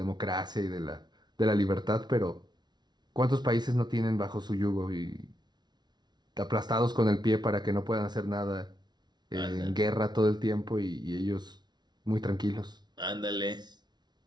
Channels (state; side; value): late; left; 0.20 ms